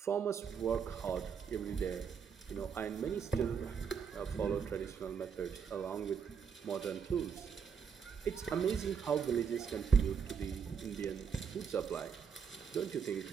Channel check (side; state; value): left; quieter; 6.6 dB